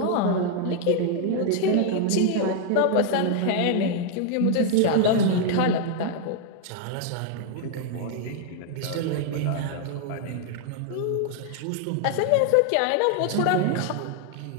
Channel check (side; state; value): both; different; correlation 0.00